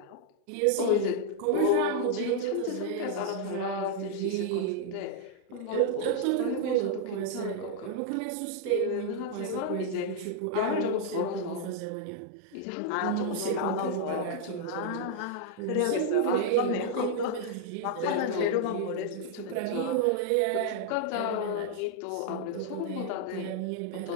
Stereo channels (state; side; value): different; both; correlation 0.00